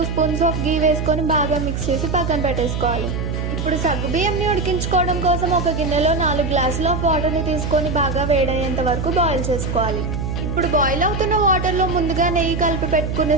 స్పూన్స్ ఆఫ్ గీ వేసుకొని బాగా మిక్స్ చేసి పక్కన పెట్టేసుకోవాలి. ఇప్పుడు సగ్గుబియ్యంని ఉడికించుకోవడం కోసం ఒక గిన్నెలో 4 గ్లాసుల ఆఫ్ వాటర్ని తీసుకొని బాగా వేడయ్యేంత వరకు బాయిల్ చేసుకోవాలి. ఇప్పుడు బాయిల్ అవుతున్న వాటర్లో ముందుగా నెయ్యి కలిపి పెట్టుకునే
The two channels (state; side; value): noise; right; hum, 3 dB below the sound